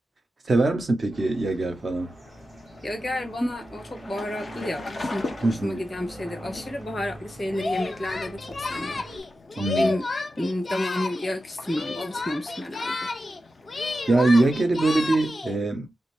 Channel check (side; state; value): both; normal; correlation 0.91